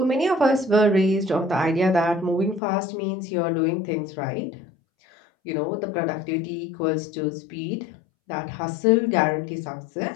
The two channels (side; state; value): right; drops out; at 2.6 s